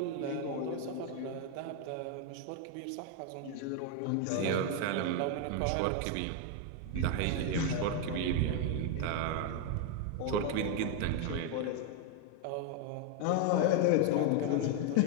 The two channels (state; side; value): different; both; correlation 0.01